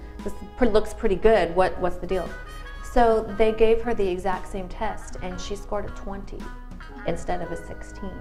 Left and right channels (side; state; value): both; identical; correlation 1.00